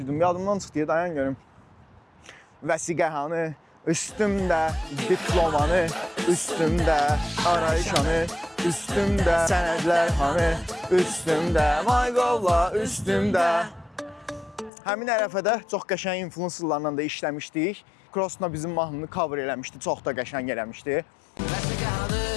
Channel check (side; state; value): right; drops out; at 14.7 s